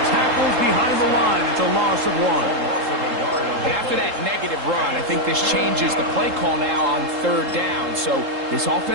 Tackles behind the line. It's a loss of 1. And after that negative run, I think this changes the play call now on 3rd down. So this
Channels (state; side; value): late; left; 3.7 ms